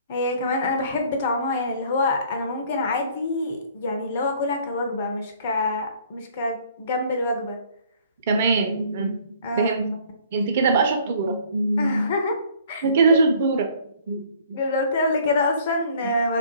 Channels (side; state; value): both; inverted; correlation -0.56